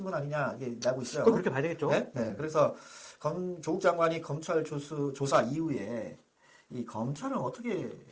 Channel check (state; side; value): identical; both; correlation 1.00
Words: 아니냐, 이게 나고 있어요. 그렇게 봐야 되겠죠. 그래서 조국 장관이 검찰 조사 이후에 이 검찰은 어떻게